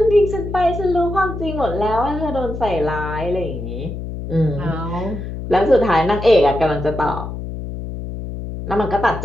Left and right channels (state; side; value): noise; left; hum, 7 dB below the sound